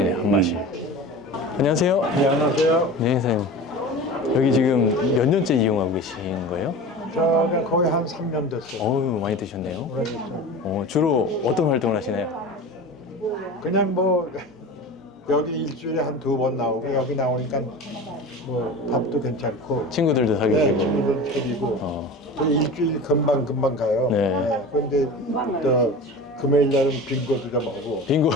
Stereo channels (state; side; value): normal; both; correlation 0.33